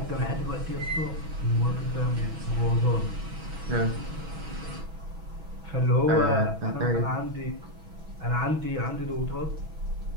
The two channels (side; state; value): left; late; 6.2 ms